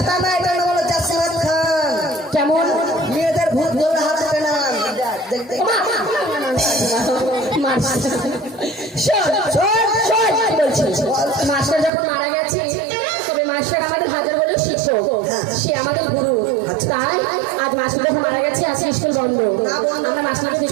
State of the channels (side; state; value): left; drops out; at 11.9 s